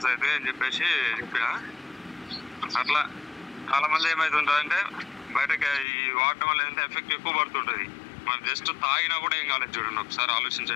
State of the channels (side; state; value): right; drops out; at 5.9 s